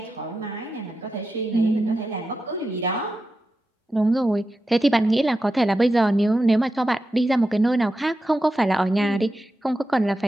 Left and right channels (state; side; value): normal; both; correlation 0.90